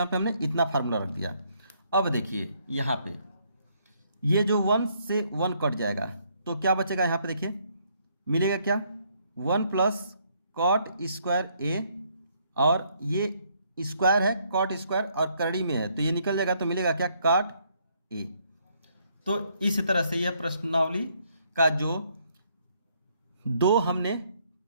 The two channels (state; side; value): inverted; both; correlation -0.69